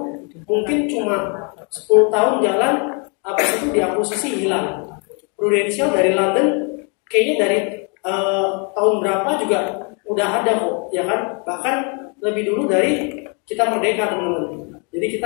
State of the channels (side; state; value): right; quieter; 36.1 dB